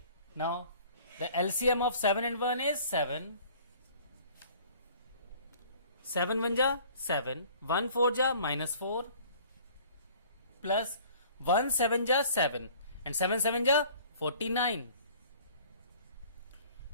Now, the LCM of 7 and 1 is 7. 7 1 ja 7. 1 4 ja minus 4. Plus 1 7 ja 7. And 7 7 ja 49.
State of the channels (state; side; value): inverted; both; correlation -0.51